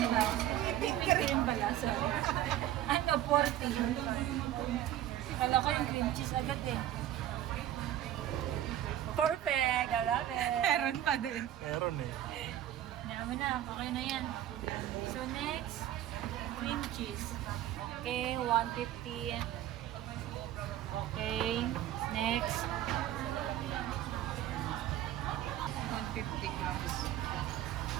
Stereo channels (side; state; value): left; quieter; 12.3 dB